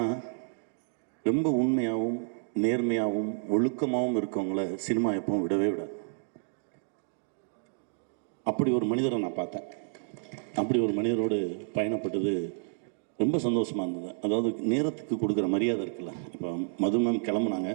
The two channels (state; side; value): silent; left; digital silence